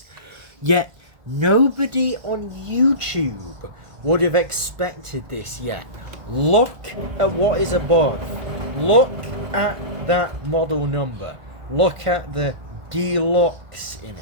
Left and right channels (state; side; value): late; left; 1.7 ms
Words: Yet, nobody on YouTube would have expected this yet. Look at what is above. Look at that model number. Look at the deluxe in